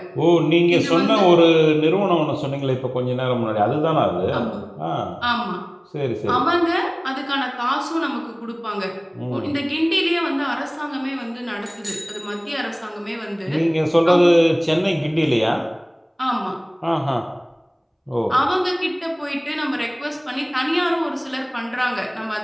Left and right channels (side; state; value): both; identical; correlation 1.00